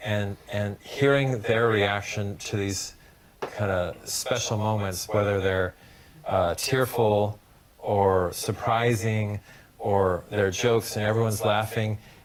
and hearing their reaction to these kind of special moments, whether they're tearful or surprising, or their jokes and everyone's laughing.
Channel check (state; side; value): identical; both; correlation 1.00